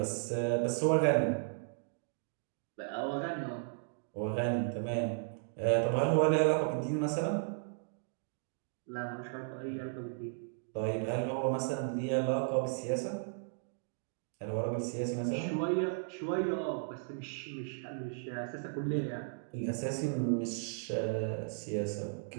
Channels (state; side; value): silent; left; digital silence